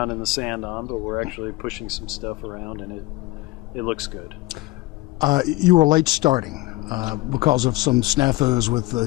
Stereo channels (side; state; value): right; quieter; 19.4 dB